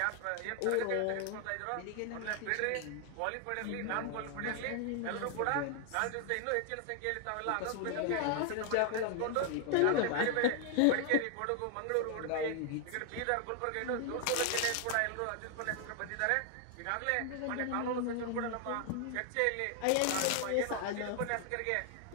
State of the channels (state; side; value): different; both; correlation 0.00